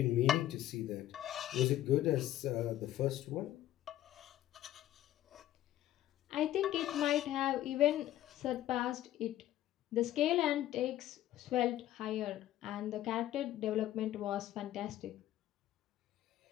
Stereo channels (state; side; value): quieter; right; 13.3 dB